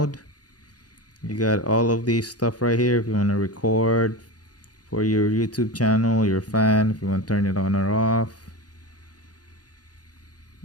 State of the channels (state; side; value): late; right; 0.69 ms